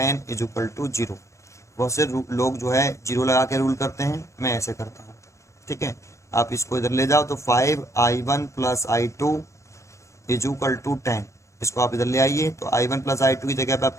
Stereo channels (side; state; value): right; late; 0.14 ms